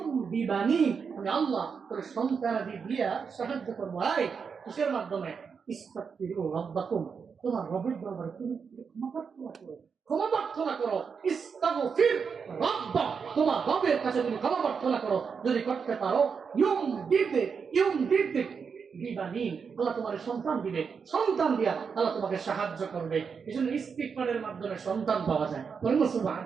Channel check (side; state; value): left; quieter; 6.0 dB